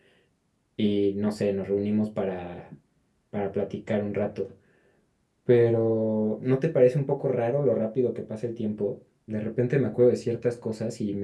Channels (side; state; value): both; identical; correlation 1.00